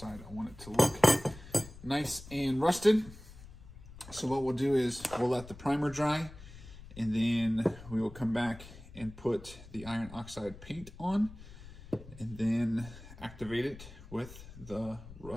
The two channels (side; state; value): left; noise; rumble, 17 dB below the sound